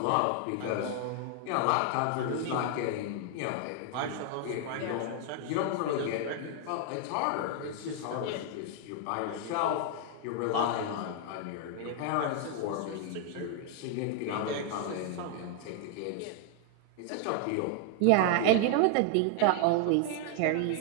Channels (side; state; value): both; different; correlation 0.00